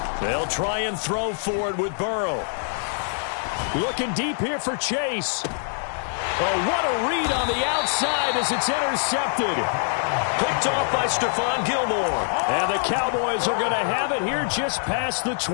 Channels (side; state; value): right; silent; 62 dB below the other